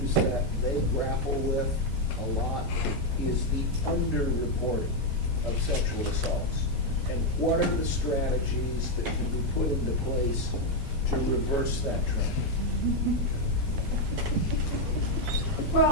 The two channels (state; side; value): normal; both; correlation 0.03